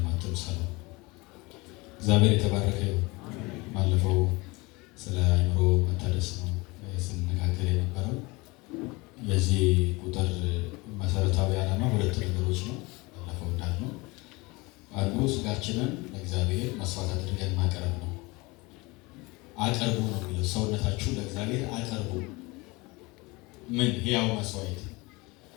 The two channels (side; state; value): right; quieter; 24.5 dB